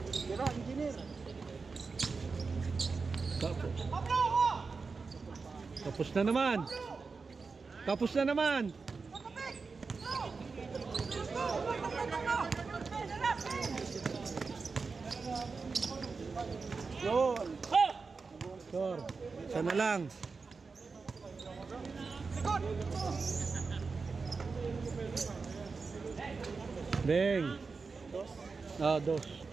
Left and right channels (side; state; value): left; quieter; 4.6 dB